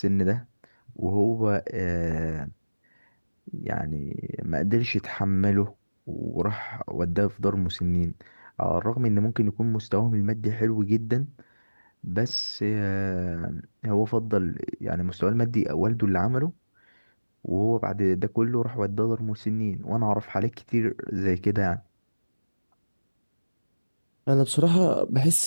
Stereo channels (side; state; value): both; inverted; correlation -1.00